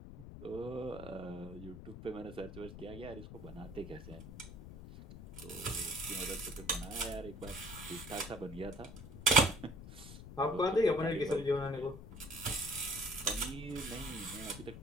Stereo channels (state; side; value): noise; left; rumble, 12 dB below the sound